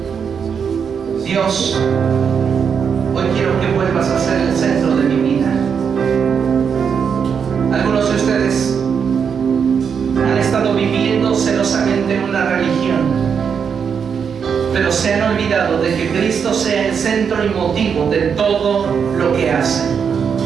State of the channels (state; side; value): quieter; left; 6.8 dB